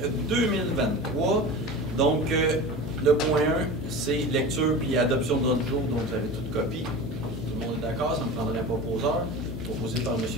2023. Donc, le point 1, c'est lecture puis adoption de l'ordre du jour, donc vous avez toute copie. Tout le monde est d'accord, ça me prendrait un proposeur, proposé par M.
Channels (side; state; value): left; noise; hum, 9 dB below the sound